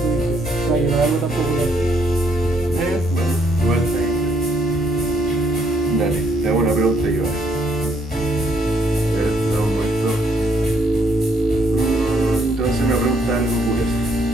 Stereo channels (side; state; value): both; normal; correlation 0.70